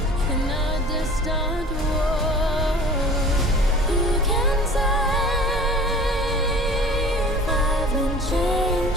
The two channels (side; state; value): both; normal; correlation 0.44